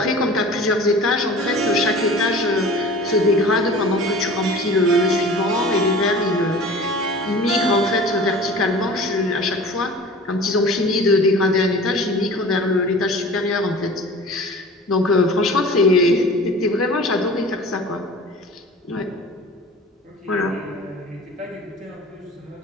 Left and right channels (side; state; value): both; normal; correlation 0.41